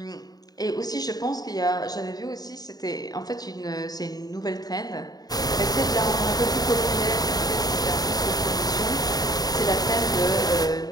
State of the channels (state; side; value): late; right; 0.19 ms